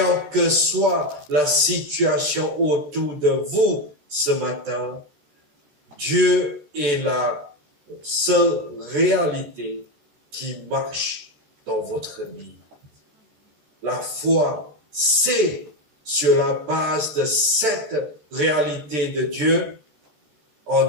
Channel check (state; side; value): late; left; 13 ms